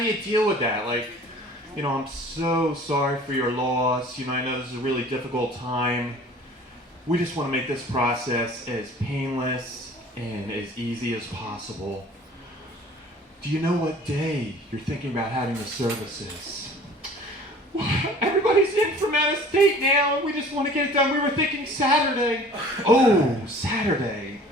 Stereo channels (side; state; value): both; normal; correlation 0.47